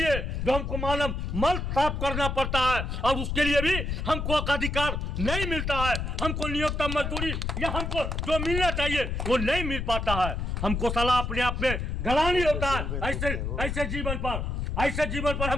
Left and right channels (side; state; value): left; noise; rumble, 2 dB below the sound